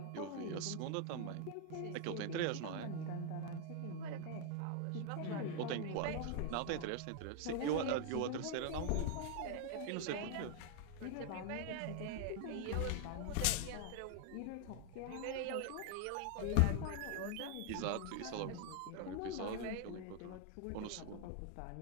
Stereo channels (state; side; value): different; both; correlation 0.00